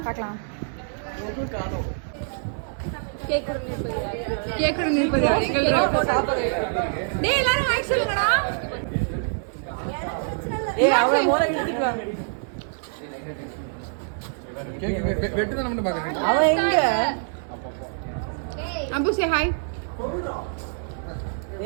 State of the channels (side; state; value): left; silent; 62 dB below the other